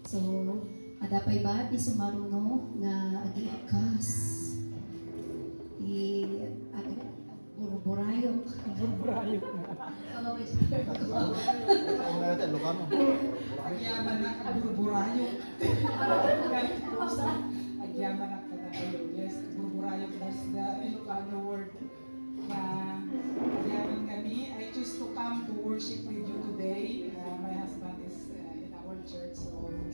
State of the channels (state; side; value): inverted; both; correlation -1.00